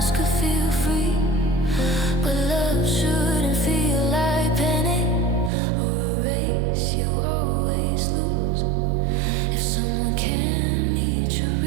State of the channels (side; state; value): left; drops out; at 5.5 s